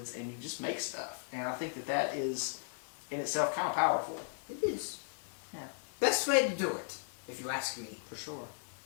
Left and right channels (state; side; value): silent; right; digital silence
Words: and you just make stuff. And I think that is, in itself, kind of powerful. it is. Yeah. Best way to do it, if you ask me. For sure.